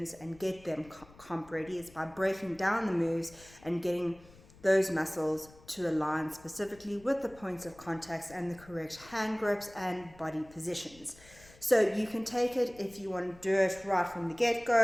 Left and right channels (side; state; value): left; noise; rumble, 23 dB below the sound